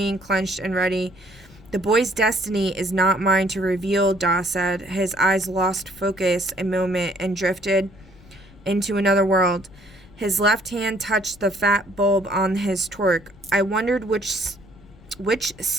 clenched and ready. The boy's destiny is not mine to reveal, Da said. His eyes lost focus a moment and drifted into another world. His left hand touched the fat bulb on his torque. I wondered which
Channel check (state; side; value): noise; left; rumble, 23 dB below the sound